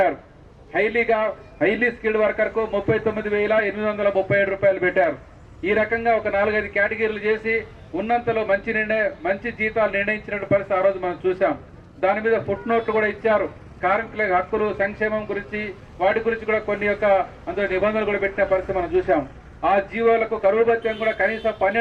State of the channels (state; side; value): identical; both; correlation 1.00